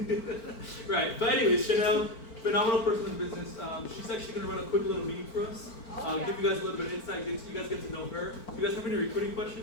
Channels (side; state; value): right; late; 4.5 ms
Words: Right, but anyways, Chanel, phenomenal person in the business. She's actually going to run a quick little meeting for us. Give you guys a little bit of insight, you guys get to know her. If you guys have any recruiting